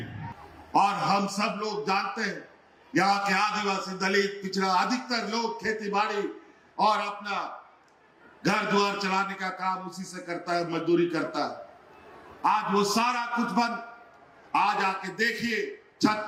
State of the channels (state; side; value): identical; both; correlation 1.00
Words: और हम सब लोग जानते हैं, यहाँ के आदिवासी, दलित, पिछड़ा, अधिकतर लोग खेती बाड़ी और अपना घर द्वार चलाने का काम उसी से करता है, मजदूरी करता है। आज वो सारा कुछ बंद। आज आके देखिए,